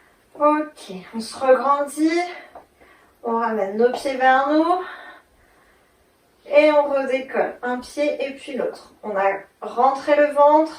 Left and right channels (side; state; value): both; identical; correlation 1.00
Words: Ok, on se regrandit. On ramène nos pieds vers nous. Et on redécolle. Un pied et puis l'autre. On a rentré le